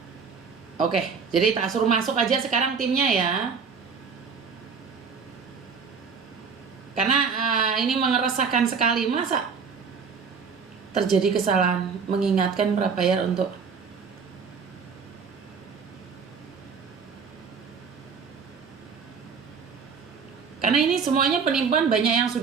Oke, jadi tak suruh masuk aja sekarang timnya ya. Karena ini mengeresahkan sekali, masa terjadi kesalahan mengingatkan prabayar untuk karena ini semuanya penipuan, banyak yang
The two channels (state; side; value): quieter; left; 5.8 dB